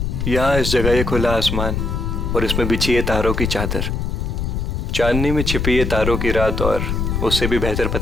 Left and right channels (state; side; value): noise; left; rumble, 1 dB below the sound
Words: यहाँ इस जगह ये खुला आसमान और इसमें बिछी है तारों की चादर, चांदनी में छिपी है तारों की रात, और उससे भी बेहतर